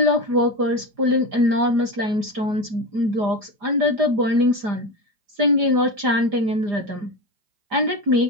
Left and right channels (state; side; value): late; left; 4.9 ms